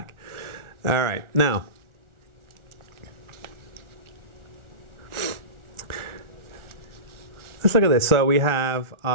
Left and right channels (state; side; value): late; left; 1.4 ms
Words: All right, now, let's look at this. So we have